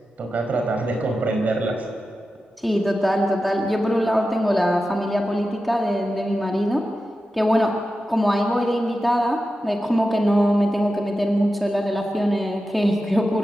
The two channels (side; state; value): both; normal; correlation 0.92